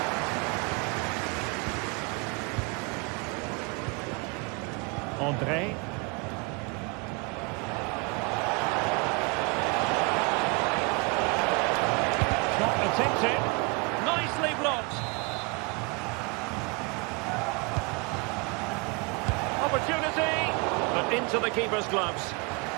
André. Shot attempted. Nicely blocked. Opportunity, but into the keeper's gloves.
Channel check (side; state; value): left; quieter; 30.4 dB